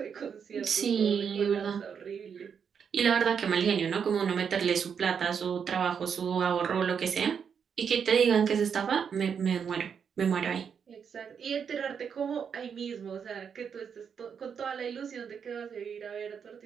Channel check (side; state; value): left; quieter; 7.0 dB